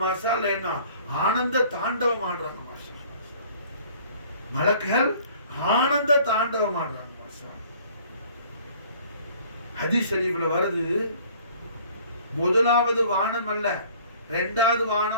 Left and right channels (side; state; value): both; inverted; correlation -0.53